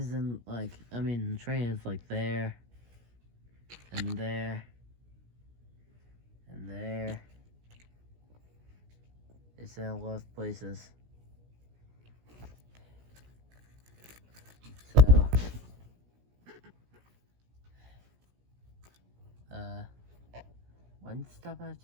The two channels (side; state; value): left; late; 17 ms